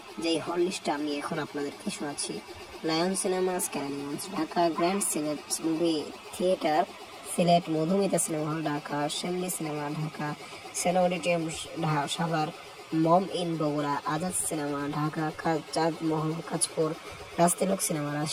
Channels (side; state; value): both; identical; correlation 1.00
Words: যেই হল লিস্টটা আমি এখন আপনাদেরকে শোনাচ্ছি। Lion Cinemas canyons Dhaka, grand Sylhet movie theatre Sylhet, Madhumita cinema hall Dhaka, Shyamoli cinema Dhaka, Sena auditorium Savar, Momo Inn Bogura, Azad cinema Dhaka, Chandmahal Kanchpur, Rajtilak cinema